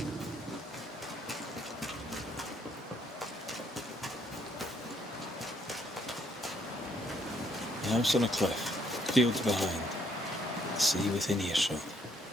The house on a cliff, fields behind, the sea within earshot.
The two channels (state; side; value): normal; both; correlation 0.70